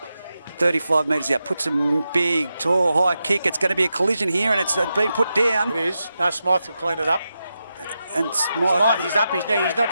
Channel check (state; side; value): inverted; both; correlation -0.89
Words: 35 metres out, puts a big, tall, high kick. It's going to be a collision here, and it's been put down. It is. No, Smythe will clean it up. And Smythe, he's up his knee. He's